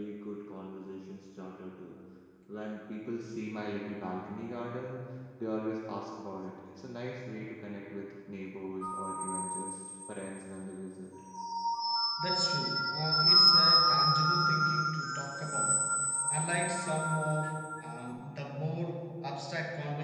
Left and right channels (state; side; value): identical; both; correlation 1.00